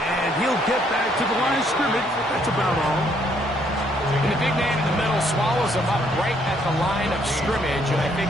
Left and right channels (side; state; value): both; normal; correlation 0.68